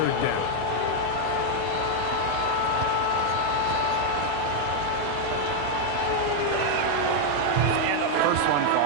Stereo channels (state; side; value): different; both; correlation 0.00